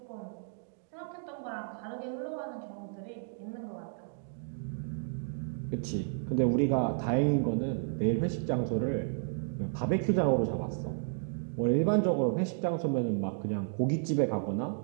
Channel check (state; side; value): silent; left; digital silence